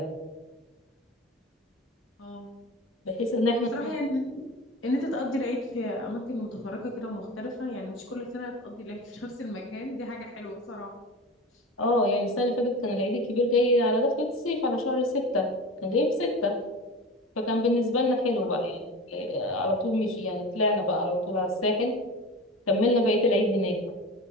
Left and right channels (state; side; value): normal; both; correlation 0.32